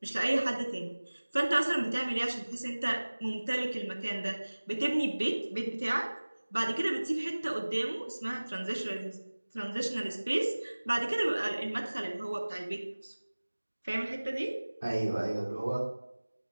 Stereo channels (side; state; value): both; inverted; correlation -1.00